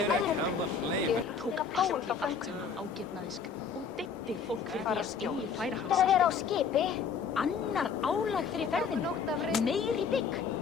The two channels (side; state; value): right; quieter; 6.0 dB